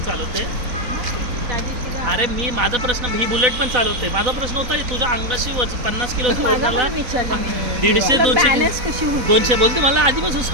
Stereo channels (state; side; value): late; left; 4.0 ms